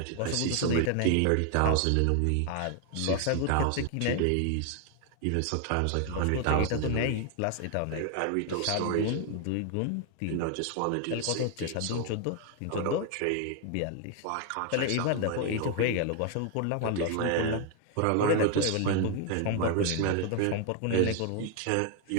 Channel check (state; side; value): different; both; correlation 0.01